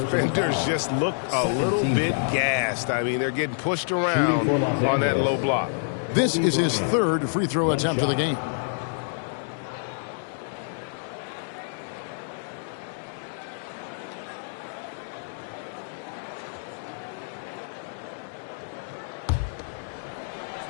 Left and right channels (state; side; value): silent; right; digital silence